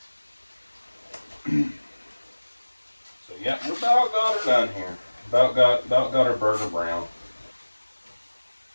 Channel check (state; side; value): inverted; both; correlation -1.00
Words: so yeah, we about got her done here. About got our burger brown.